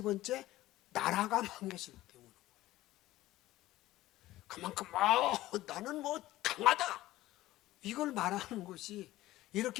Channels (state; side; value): quieter; right; 16.2 dB